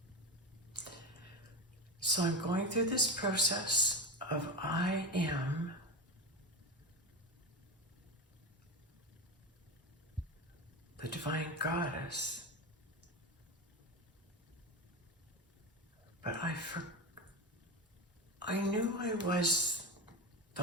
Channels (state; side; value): normal; both; correlation 0.21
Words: So I'm going through this process of I am the Divine Goddess, but I knew I was